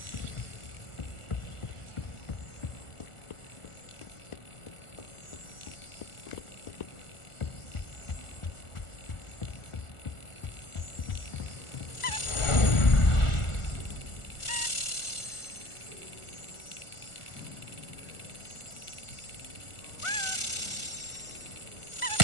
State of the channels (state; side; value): late; right; 1.4 ms